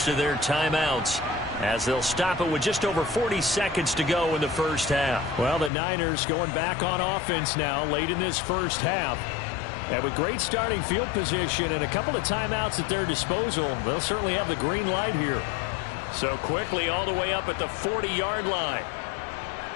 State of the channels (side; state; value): right; drops out; at 5.7 s